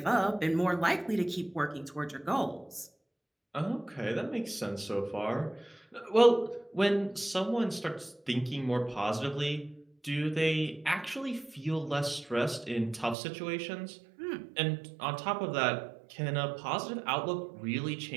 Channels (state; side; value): drops out; left; at 13.2 s